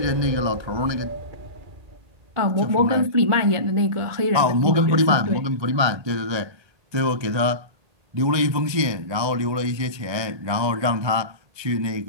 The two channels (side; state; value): left; late; 1.3 ms